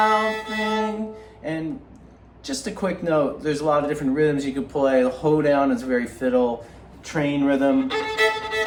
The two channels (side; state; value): both; identical; correlation 1.00